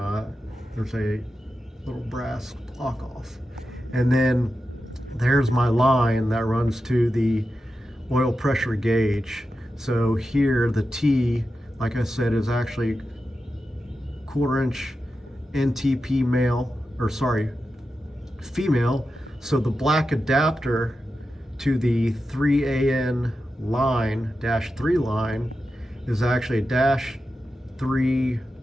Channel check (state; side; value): normal; both; correlation 0.90